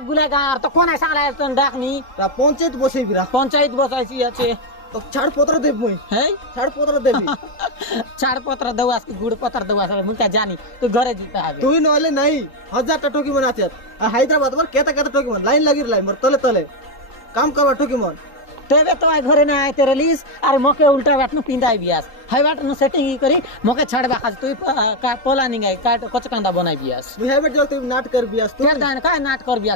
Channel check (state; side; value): late; right; 3.8 ms